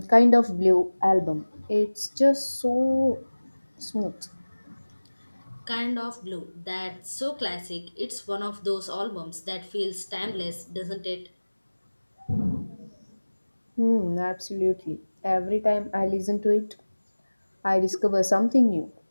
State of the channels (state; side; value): inverted; both; correlation -1.00